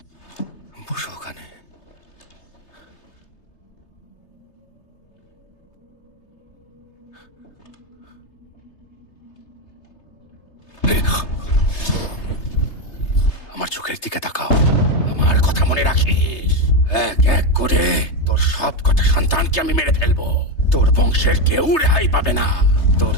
বসো ওখানে। আমার চোখের দিকে তাকাও। আমার কথা মনে রাখিস। এক এক করে তোর সব কটা সন্তানকে আমি মেরে ফেলবো। তোর বংশের কেউ রেহাই পাবে না। তোর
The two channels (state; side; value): late; right; 3.3 ms